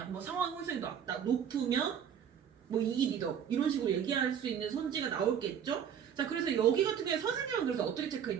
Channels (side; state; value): left; quieter; 8.4 dB